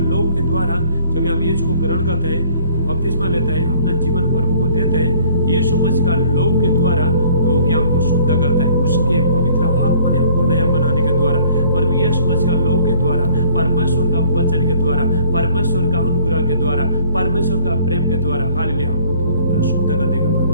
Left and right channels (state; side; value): inverted; both; correlation -0.57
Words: लहू के द्वारा जब हम यीशु को ग्रहण करते हैं, बपतिस्मा लेता है, अपना जीवन प्रभु को देते हैं, यीशु मसीह का लहू के द्वारा धो के हमको शुद्ध करता है, उसके पवित्र आत्मा ने हमको नया बनाने के द्वारा, प्रभु यीशु मसीह का लहू के द्वारा, परमेश्वर का वचन के द्वारा, परमेश्वर का अनुग्रह के द्वारा, परमेश्वर का प्रेम के द्वारा, हालेलुया, हमको धो के पूरा शुद्ध कर देगा